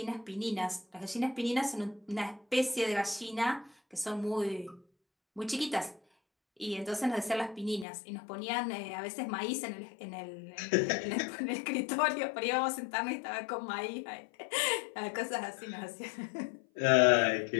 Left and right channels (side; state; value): right; drops out; at 7.9 s